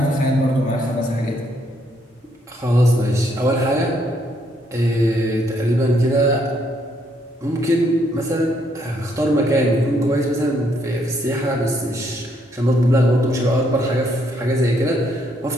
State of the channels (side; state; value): both; normal; correlation 0.72